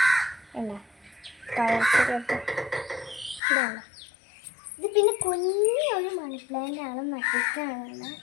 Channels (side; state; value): right; drops out; at 3.4 s